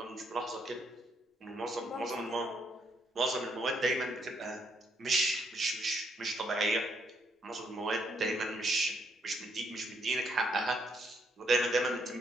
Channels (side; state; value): both; normal; correlation 0.73